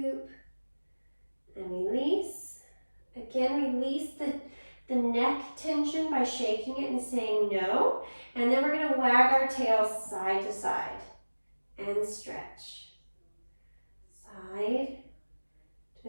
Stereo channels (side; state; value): both; inverted; correlation -1.00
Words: and release. Again, release the neck tension by shaking it and saying no. And then we're going to wag our tail side to side and stretch. Side